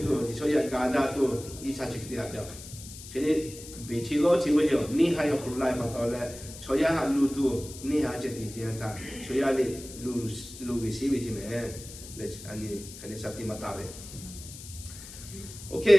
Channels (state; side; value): noise; left; hiss, 14 dB below the sound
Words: 度，所以家家都醫生直啲下就，佢哋比起攞錢嗰時，你係要好來把到咧，所以下路度你係只啲啲他，所以你路嘅事為咩？咧，安尼肯定實啲乜大嘅。